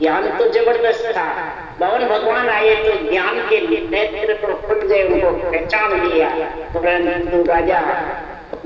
ज्ञान तो जबरदस्त था, भगवान भगवान आए तो ज्ञान के नेत्र तो खुल गए, उनको पहचान लिया। परंतु राजा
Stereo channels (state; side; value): identical; both; correlation 1.00